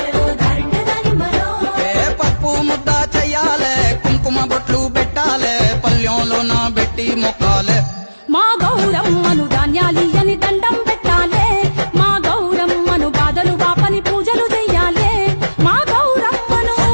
పప్పు ముద్ద చెయ్యాలే కుంకుమ బొట్లు పెట్టాలే పల్లెంలోన పెట్టి మొక్కాలే మా గౌరమ్మను ధాన్యాలియని దండం పెట్టాలే మా గౌరమ్మను బాధలు బాపని పూజలు చెయ్యాలే మా గౌరమ్మను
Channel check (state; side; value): inverted; both; correlation -1.00